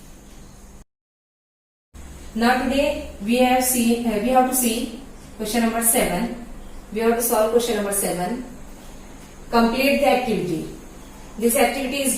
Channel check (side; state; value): both; identical; correlation 1.00